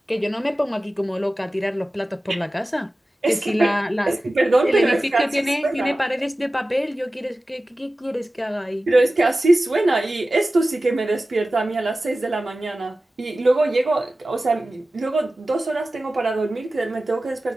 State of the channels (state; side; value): normal; both; correlation 0.96